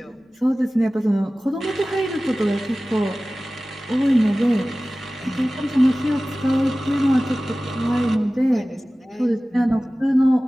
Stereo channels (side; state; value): both; normal; correlation 0.97